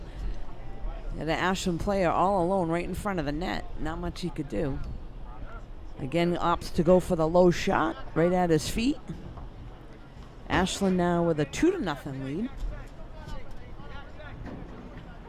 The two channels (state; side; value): identical; both; correlation 1.00